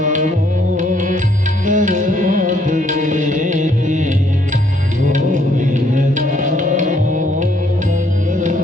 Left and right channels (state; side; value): normal; both; correlation 0.68